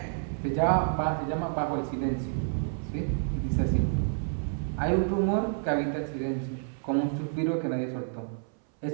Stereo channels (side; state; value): left; silent; 58 dB below the other